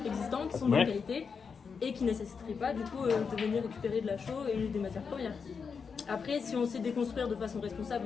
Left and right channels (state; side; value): quieter; right; 5.8 dB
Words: existants, qui sont de bonne qualité et qui ne nécessiteraient pas du coup de venir récupérer de la chaux et des matières premières. Après, si on sait déconstruire de façon